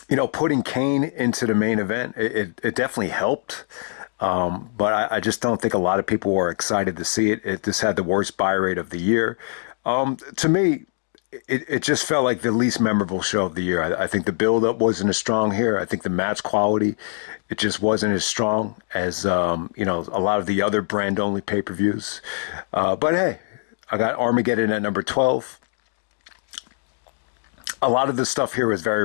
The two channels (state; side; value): silent; right; digital silence